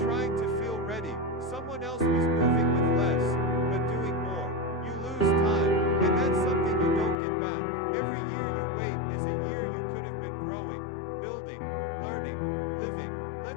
to feel ready. Someone else was moving with less, but doing more. You lose time, and that's something you don't get back. Every year you wait is a year you could have been growing, building, learning, living.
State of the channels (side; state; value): right; drops out; at 7.2 s